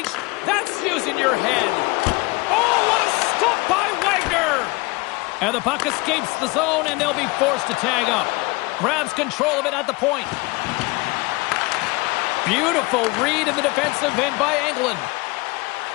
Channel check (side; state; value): right; quieter; 24.8 dB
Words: That's using your head. Oh, what a stop by Wagner. And the puck escapes the zone, and they'll be forced to tag up. Grabs control of it at the point. Beautiful read in the defensive end by Engelland.